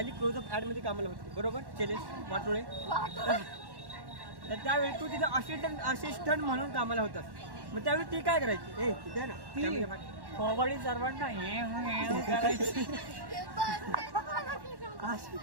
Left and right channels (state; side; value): late; left; 1.1 ms